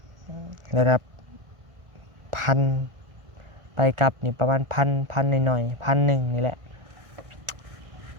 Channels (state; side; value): late; left; 1.4 ms